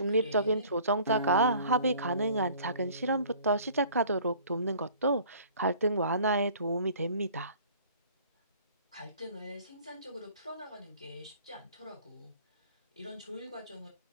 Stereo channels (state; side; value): inverted; both; correlation -0.50